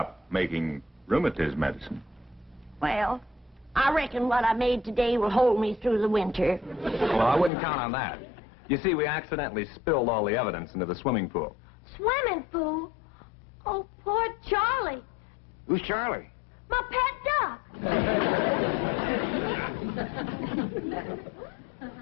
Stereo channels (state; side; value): drops out; right; at 7.5 s